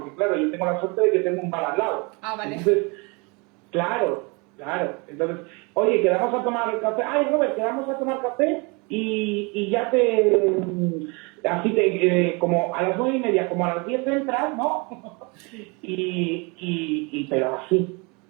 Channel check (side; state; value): left; quieter; 29.6 dB